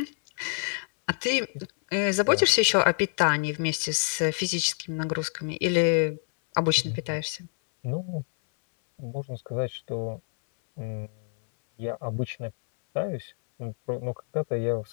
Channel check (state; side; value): silent; right; 60 dB below the other